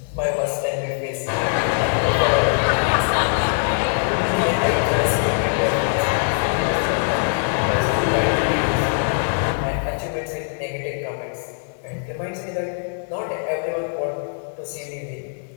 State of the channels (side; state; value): right; silent; digital silence